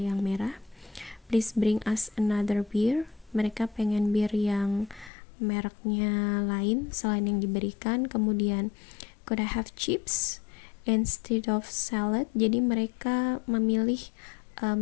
merah. Please bring us another beer. Mereka pengen bir yang mereknya lain selain yang diberikan. Kemudian could I have chips instead of salad? Jadi mereka memilih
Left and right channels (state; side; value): drops out; right; at 5.1 s